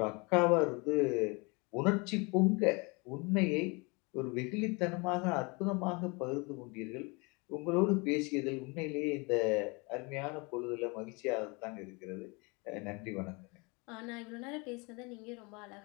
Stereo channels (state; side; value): quieter; right; 28.9 dB